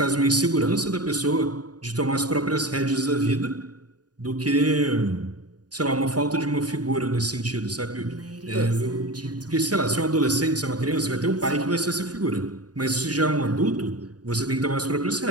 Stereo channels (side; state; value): left; late; 0.68 ms